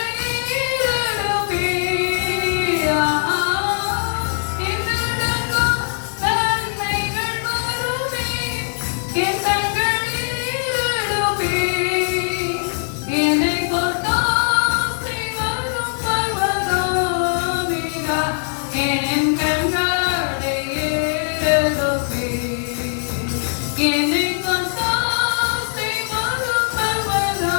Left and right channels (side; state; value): right; silent; digital silence